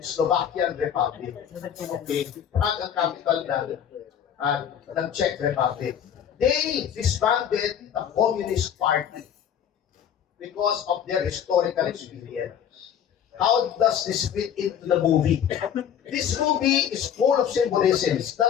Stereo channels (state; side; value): quieter; right; 9.0 dB